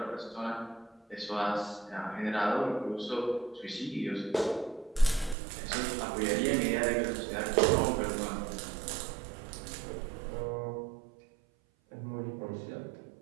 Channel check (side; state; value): left; drops out; at 5.4 s